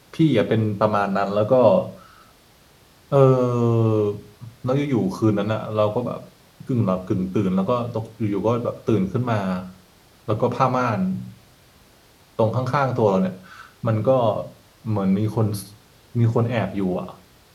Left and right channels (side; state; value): both; identical; correlation 1.00